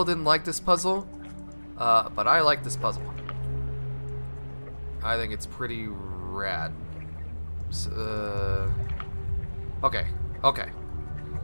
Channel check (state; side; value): inverted; both; correlation -1.00